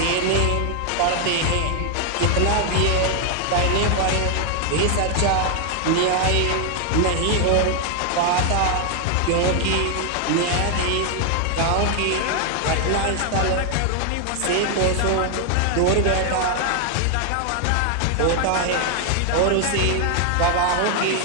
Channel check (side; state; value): both; different; correlation 0.00